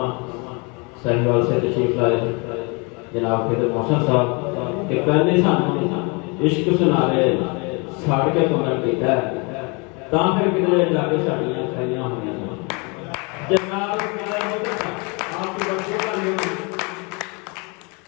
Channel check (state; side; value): quieter; right; 30.9 dB